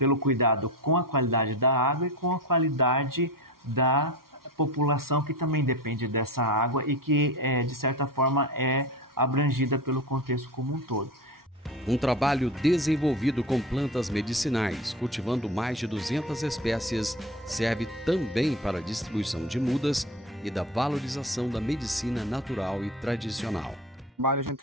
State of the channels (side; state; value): both; normal; correlation 0.28